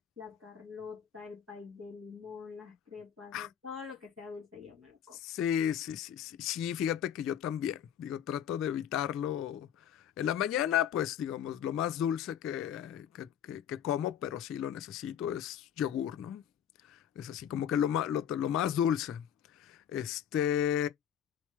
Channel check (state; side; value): quieter; right; 9.6 dB